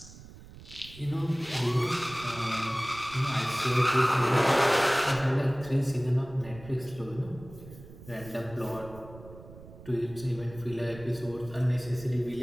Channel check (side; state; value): right; noise; rumble, 17 dB below the sound